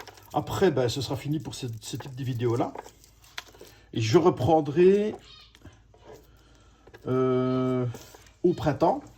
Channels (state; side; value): identical; both; correlation 1.00